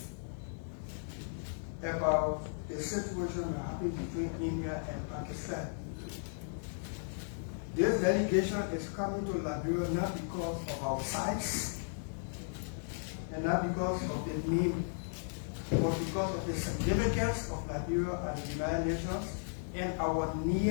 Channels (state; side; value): silent; right; digital silence